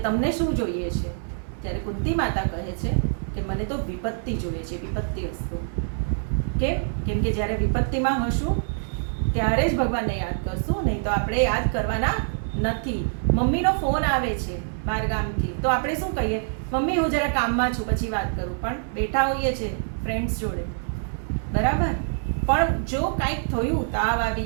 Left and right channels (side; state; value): left; silent; digital silence